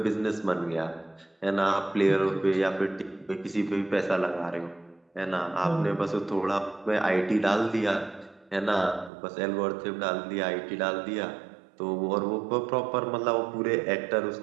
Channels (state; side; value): drops out; left; at 9.1 s